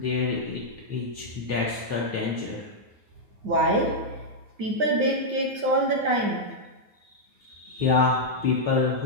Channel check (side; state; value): left; late; 9.5 ms